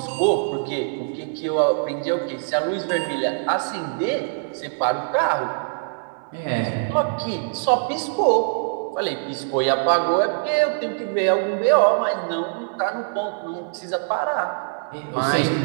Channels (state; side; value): silent; left; 63 dB below the other